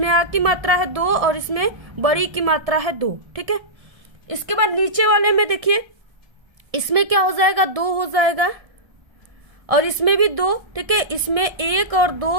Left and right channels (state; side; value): late; left; 1.3 ms